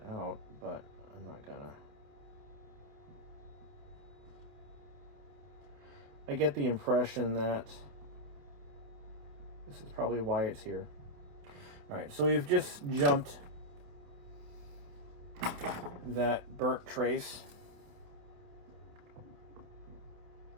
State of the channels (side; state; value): left; late; 28 ms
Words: out, but I'm not gonna. I get the impression that this is probably why it's here. All right, so we've just jumped that burnt trace.